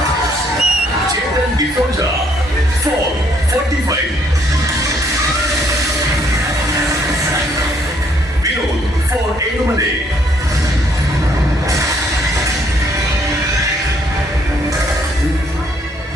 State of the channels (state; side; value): normal; both; correlation 0.68